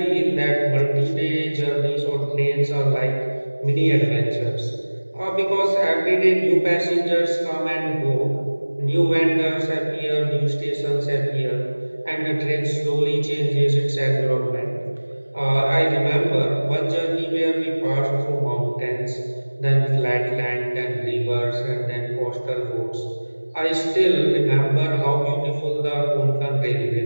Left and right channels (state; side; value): inverted; both; correlation -1.00